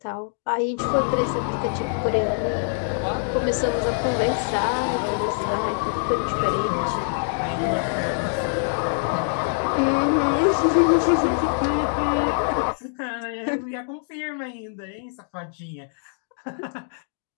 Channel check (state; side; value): silent; right; digital silence